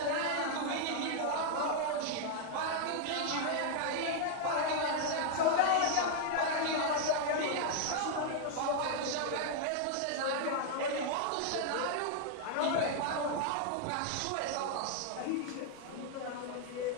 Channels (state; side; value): different; both; correlation 0.00